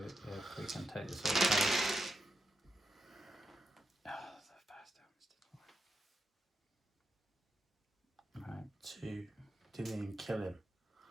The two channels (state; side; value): normal; both; correlation 0.85